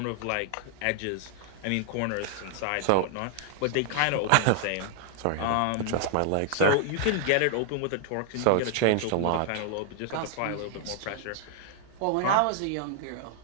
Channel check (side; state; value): both; different; correlation -0.01